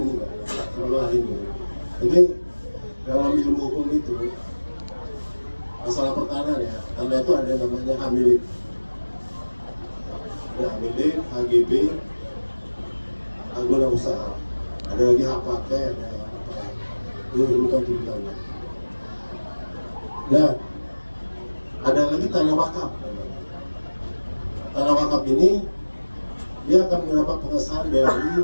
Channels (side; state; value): both; inverted; correlation -1.00